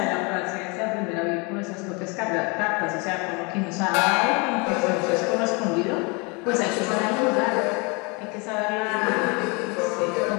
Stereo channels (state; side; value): quieter; right; 30.0 dB